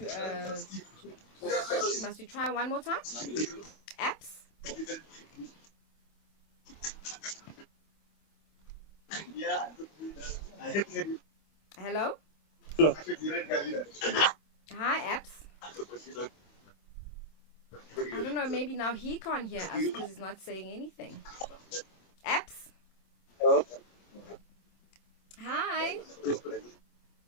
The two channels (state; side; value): late; right; 25 ms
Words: Must we try one more time? Apps. Hello. Hello. Hi, apps. I don't know, maybe now he can't hear us because he's not saying anything. Apps? Hello. Hi.